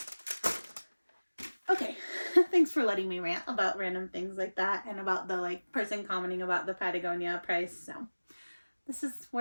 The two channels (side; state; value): both; inverted; correlation -1.00